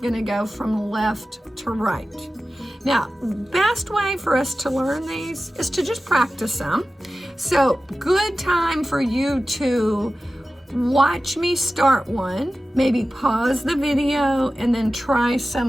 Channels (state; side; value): normal; both; correlation 0.95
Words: to go from left to right. Now, best way for us to learn these is to just practice them. So good time for you to watch me start one, maybe pause the video and then try